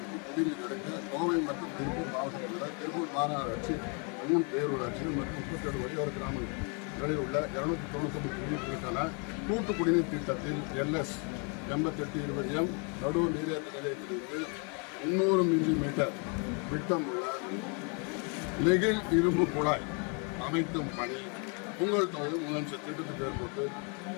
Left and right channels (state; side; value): quieter; right; 36.0 dB